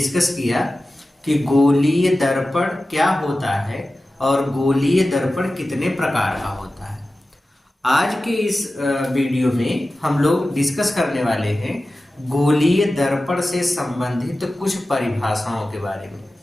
किया कि गोलीय दर्पण क्या होता है और गोलीय दर्पण कितने प्रकार का होता है। आज के इस वीडियो में हम लोग डिस्कस करने वाले हैं गोलीय दर्पण से संबंधित कुछ परिभाषाओं के बारे में।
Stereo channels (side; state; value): both; normal; correlation 0.95